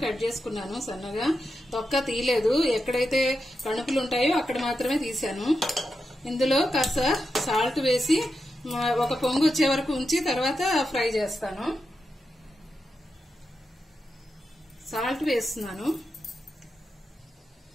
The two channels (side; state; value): both; normal; correlation 0.88